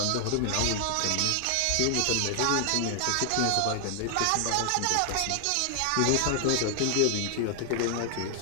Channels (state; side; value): different; both; correlation 0.00